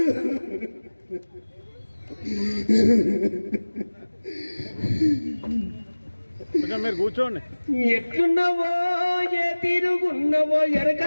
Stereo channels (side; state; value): both; inverted; correlation -1.00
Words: మీరు కూర్చోండి. ఎట్లున్నావో ఏ తీరుగున్నావో